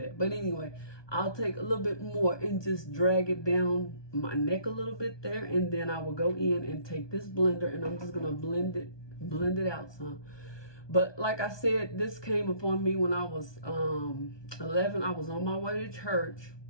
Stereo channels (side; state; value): right; late; 1.2 ms